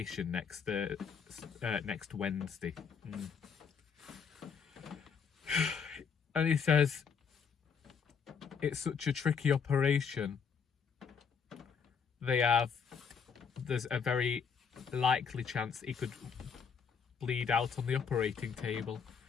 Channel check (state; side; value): quieter; right; 6.4 dB